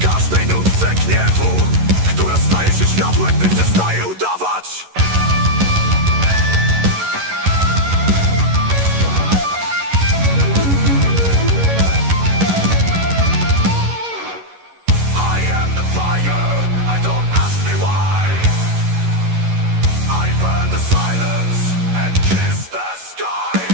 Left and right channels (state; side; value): late; left; 11 ms